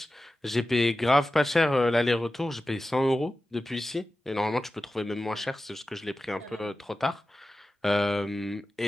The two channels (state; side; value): normal; both; correlation 0.94